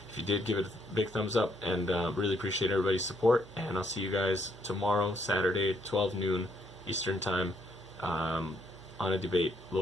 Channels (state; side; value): noise; right; hum, 22 dB below the sound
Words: If you did, give it a big thumbs up, and really appreciate everybody's support. And I'll see you guys tomorrow, Saturday, 12 noon Eastern time, on a debate,